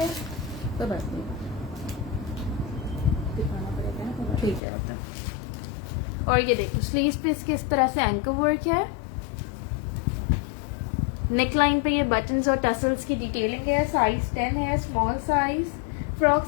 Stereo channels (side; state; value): right; drops out; at 4.6 s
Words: कोई बात नहीं, दिखाना पड़ेगा ना। ठीक है आपका। और ये देखो, स्लीव्स पे इसके इस तरह से एंकर वर्क है। नेकलाइन पे ये बटन्स और टसल्स की डिटेलिंग है। साइज 10 है, स्मॉल साइज।